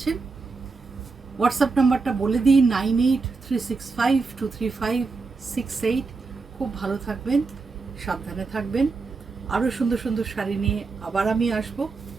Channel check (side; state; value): left; quieter; 4.2 dB